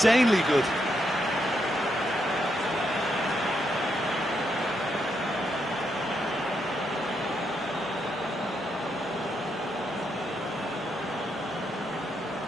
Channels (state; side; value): normal; both; correlation 0.79